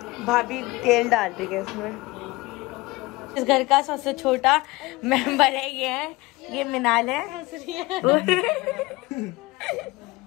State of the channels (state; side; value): quieter; right; 21.9 dB